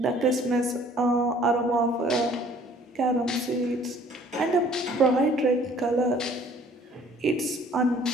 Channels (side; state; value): both; normal; correlation 0.56